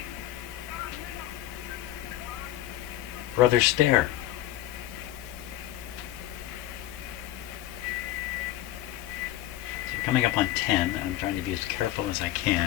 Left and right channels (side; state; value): right; quieter; 14.0 dB